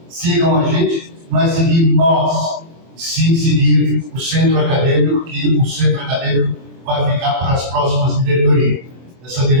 sigam a gente, não é seguir nós, sim seguir o centro acadêmico, que o centro acadêmico vai ficar para as próximas diretorias. Essa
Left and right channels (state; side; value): late; left; 24 ms